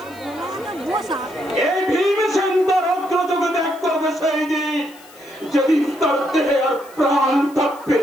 এই ভীমসেন তার অগ্রযোগে ত্যাগ করবে সেই দিন যেদিন তার দেহে আর প্রাণ থাকবে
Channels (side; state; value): left; noise; hiss, 24 dB below the sound